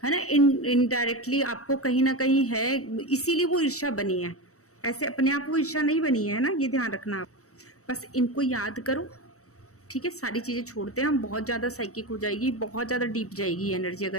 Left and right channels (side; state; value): right; late; 0.65 ms